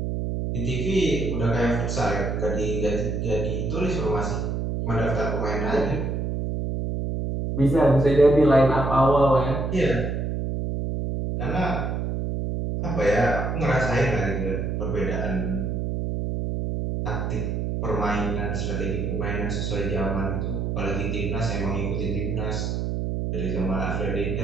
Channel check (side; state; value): right; noise; hum, 1 dB below the sound